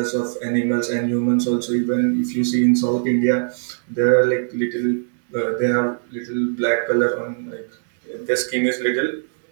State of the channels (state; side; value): silent; left; digital silence